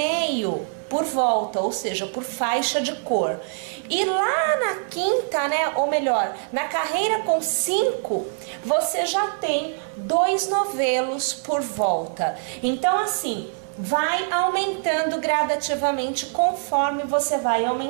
por volta, ou seja, por faixa de cor. E lá na quinta, né, ou melhor, na carreira com 5, você já tem 2 novelos por volta. Então, assim, vai aumentando gradativamente conforme você vai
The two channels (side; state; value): left; silent; 63 dB below the other